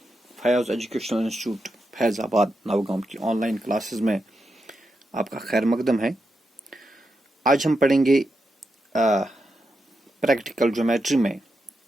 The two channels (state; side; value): normal; both; correlation 0.86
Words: Fayaz educational institute Faizabad Navgaon की ऑनलाइन क्लासेस में आपका खैर मकदम है। आज हम पढ़ेंगे प्रैक्टिकल ज्योमेट्री में